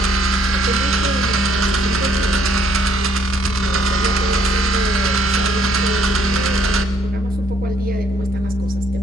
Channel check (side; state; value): both; normal; correlation 0.67